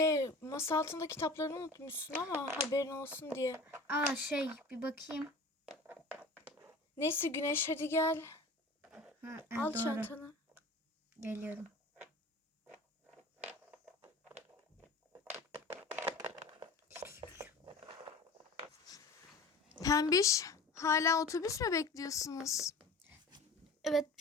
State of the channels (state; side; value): quieter; right; 3.0 dB